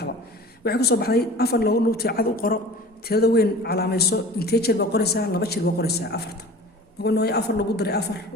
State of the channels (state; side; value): normal; both; correlation 0.41